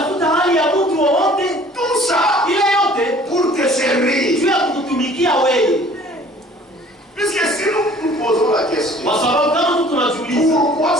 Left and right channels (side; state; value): both; normal; correlation 0.52